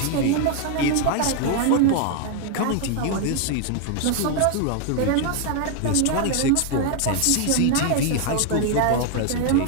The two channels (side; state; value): both; different; correlation 0.00